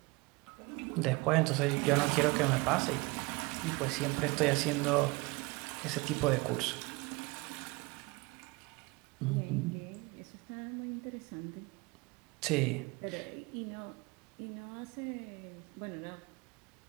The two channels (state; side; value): quieter; left; 24.7 dB